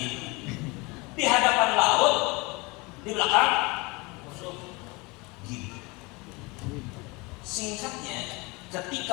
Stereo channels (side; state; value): right; quieter; 26.0 dB